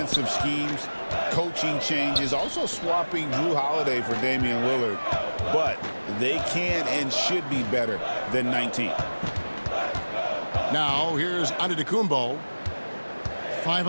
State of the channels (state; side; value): inverted; both; correlation -1.00